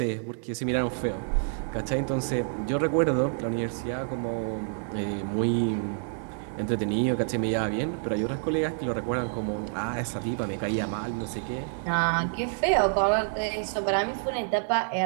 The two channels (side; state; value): left; silent; 59 dB below the other